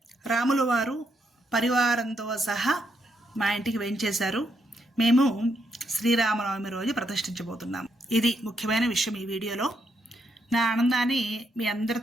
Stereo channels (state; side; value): normal; both; correlation 0.78